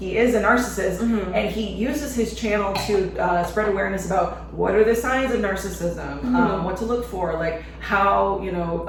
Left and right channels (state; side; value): identical; both; correlation 1.00